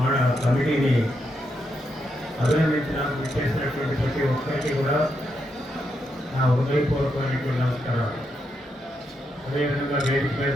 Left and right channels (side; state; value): both; normal; correlation 0.81